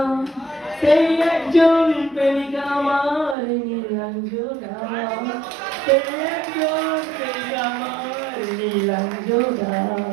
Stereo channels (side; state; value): left; drops out; at 3.4 s